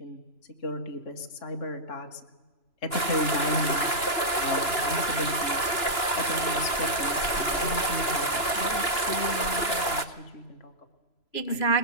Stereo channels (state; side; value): late; right; 2.9 ms